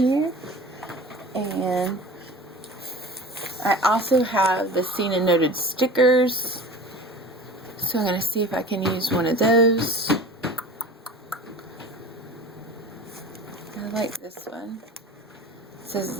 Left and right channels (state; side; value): normal; both; correlation 0.39